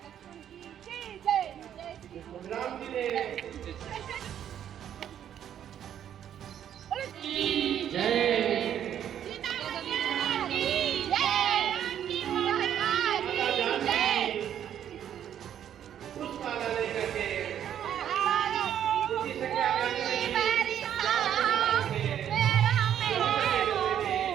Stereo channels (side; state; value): left; quieter; 9.9 dB